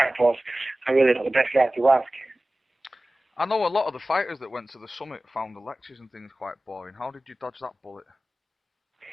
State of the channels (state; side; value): normal; both; correlation 0.97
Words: I'm really not the best guy to ask. I know a lot of the fighters that went to the summit found the lectures and things quite boring. How did you dodge that bullet?